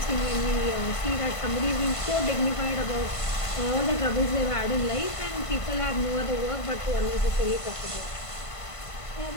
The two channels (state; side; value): late; right; 1.5 ms